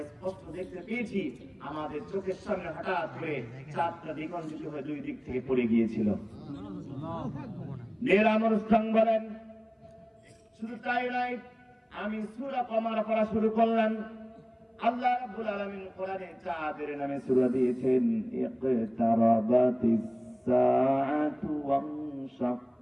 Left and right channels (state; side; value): identical; both; correlation 1.00